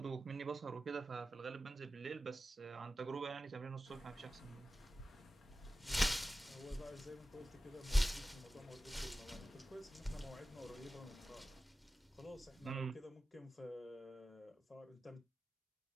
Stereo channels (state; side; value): normal; both; correlation 0.94